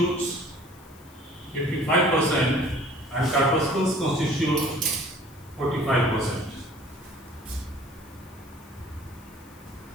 55% and corpuscles constitute 45%.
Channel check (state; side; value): noise; left; hiss, 26 dB below the sound